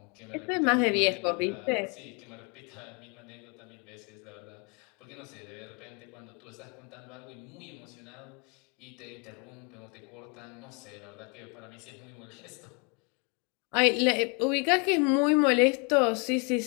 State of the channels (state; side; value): quieter; right; 33.5 dB